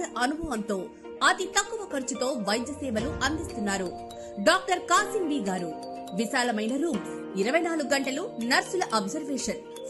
అనుభవంతో అతి తక్కువ ఖర్చుతో వైద్య సేవలు అందిస్తున్నారు. డాక్టర్ కాసిం బి గారు. విశాలమైన రూమ్స్, 24 గంటలు నర్సుల observation,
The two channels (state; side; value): identical; both; correlation 1.00